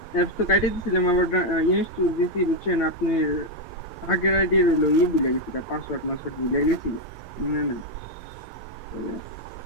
অ্যাপস তো কাটিয়ে দিয়েছিলাম, আবার ইনস্টল দিয়েছি বুঝছেন। আপনি আগের আইডি রইলো ভুলে গেছি, পাসওয়ার্ড ভুলে গেছি, মনে নাই।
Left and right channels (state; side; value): late; right; 8.9 ms